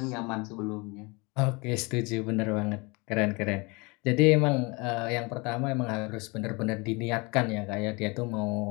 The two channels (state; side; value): quieter; right; 27.6 dB